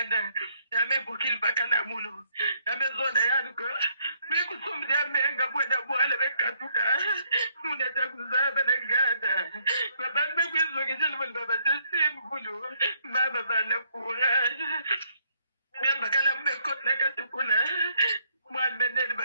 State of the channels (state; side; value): inverted; both; correlation -0.70